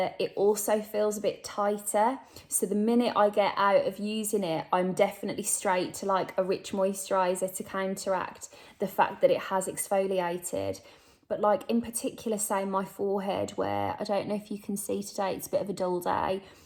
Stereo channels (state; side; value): identical; both; correlation 1.00